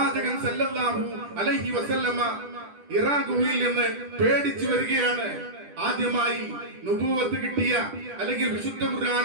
സല്ലല്ലാഹു അലൈഹി വസല്ലമ ഇറാ ഗുഹയിൽ നിന്ന് പേടിച്ചു വരികയാണ്. ആദ്യമായി നുബുവത്ത് കിട്ടിയ അല്ലെങ്കിൽ വിശുദ്ധ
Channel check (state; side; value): late; left; 10 ms